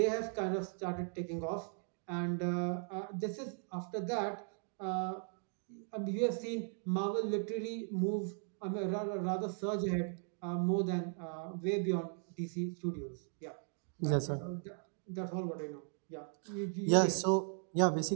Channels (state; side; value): silent; left; 53 dB below the other